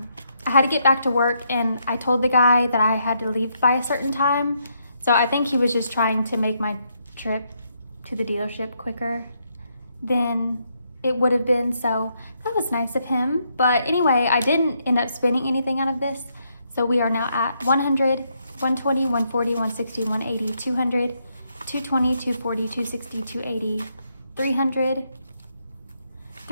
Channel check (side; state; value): both; inverted; correlation -0.76